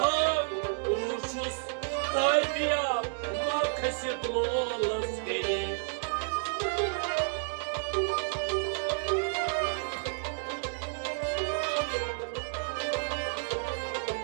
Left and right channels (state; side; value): silent; left; digital silence